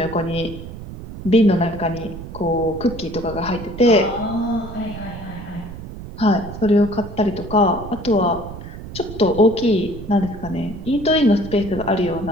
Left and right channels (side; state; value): right; noise; rumble, 12 dB below the sound